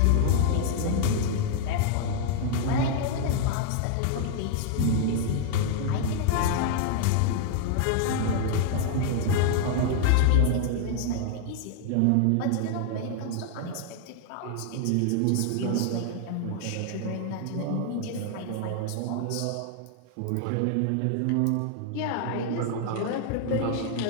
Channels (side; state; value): both; different; correlation 0.00